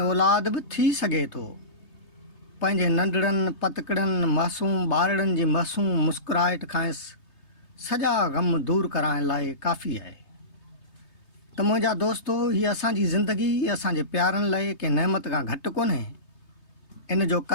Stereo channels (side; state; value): right; late; 3.2 ms